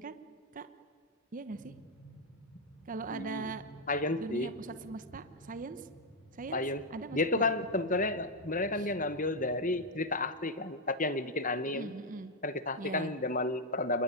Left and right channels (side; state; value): both; normal; correlation 0.01